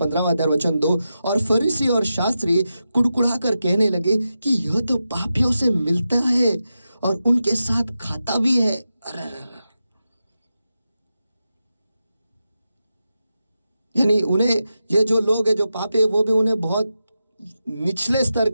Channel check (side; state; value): both; inverted; correlation -0.90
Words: अध्याय वचन 2, और फरीसी और शास्त्री कुड़कुड़ा कर कहने लगे कि यह तो पापियों से मिलता है और उनके साथ खाता भी है। यानी उन्हें, ये जो लोग हैं जो पापी है, वो भी उन्हें बहुत निचले स्तर